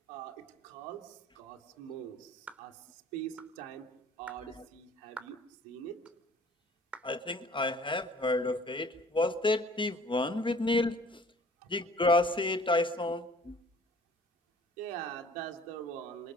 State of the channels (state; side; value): normal; both; correlation 0.52